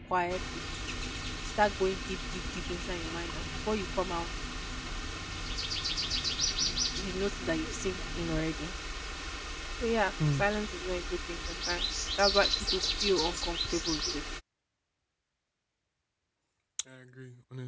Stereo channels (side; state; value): both; identical; correlation 1.00